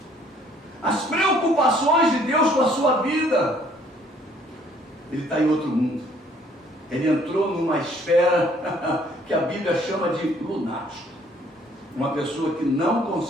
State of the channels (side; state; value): both; normal; correlation 0.61